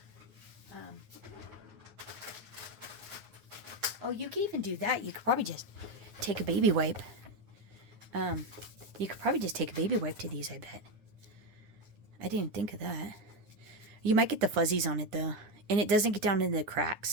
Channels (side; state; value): left; late; 9.8 ms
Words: Oh, you can even do that. You could probably just take a baby wipe. You could probably just take a baby wipe to these, I bet. I didn't think of that. You might get the fuzzies on it, though. And it doesn't get down into the